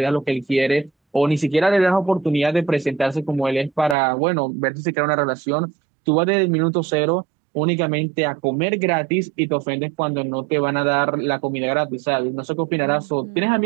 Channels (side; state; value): left; drops out; at 4.0 s